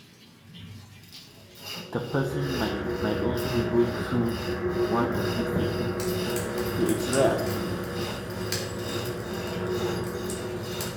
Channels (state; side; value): identical; both; correlation 1.00